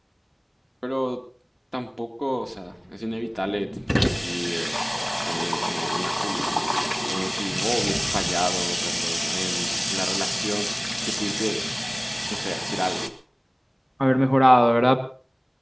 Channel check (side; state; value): both; identical; correlation 1.00